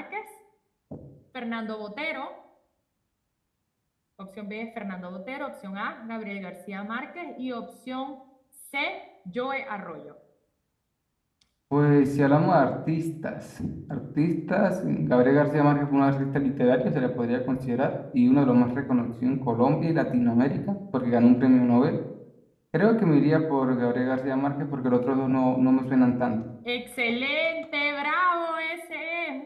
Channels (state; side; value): identical; both; correlation 1.00